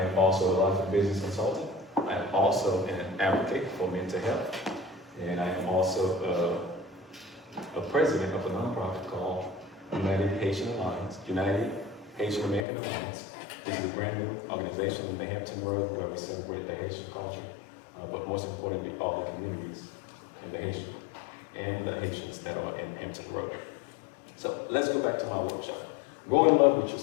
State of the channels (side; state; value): right; drops out; at 12.7 s